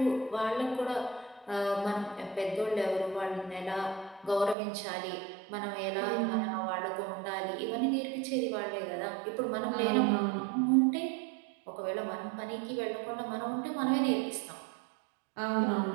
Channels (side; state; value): left; drops out; at 4.5 s